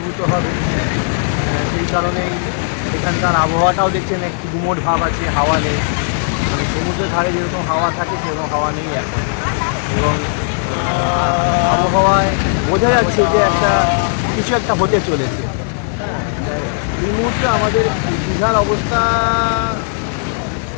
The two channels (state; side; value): silent; right; 60 dB below the other